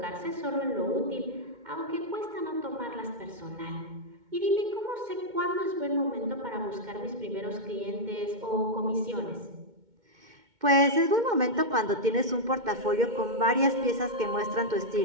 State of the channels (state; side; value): late; left; 2.2 ms